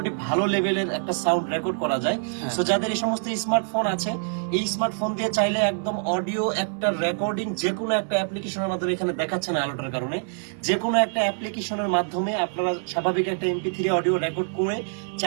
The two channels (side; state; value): left; silent; digital silence